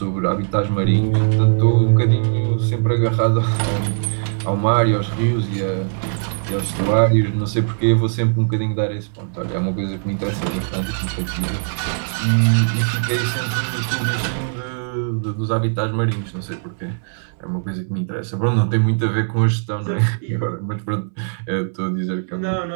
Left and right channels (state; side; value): silent; left; 63 dB below the other